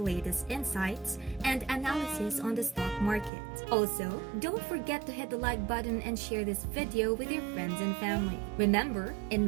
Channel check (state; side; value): drops out; left; at 3.3 s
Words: insights and analysis on the stock market. Also, don't forget to hit the like button and share this video with your friends and family. Remember,